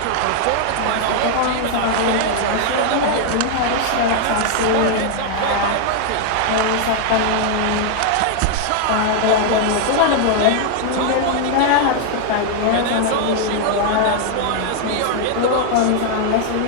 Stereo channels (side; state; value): both; different; correlation 0.00